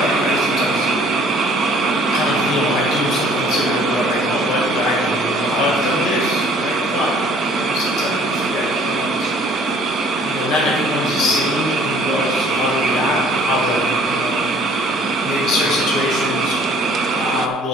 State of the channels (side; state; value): both; normal; correlation 0.56